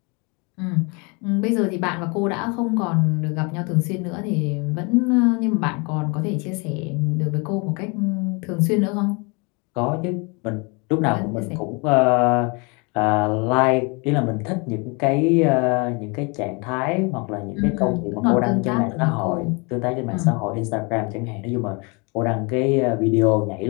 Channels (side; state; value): right; quieter; 30.7 dB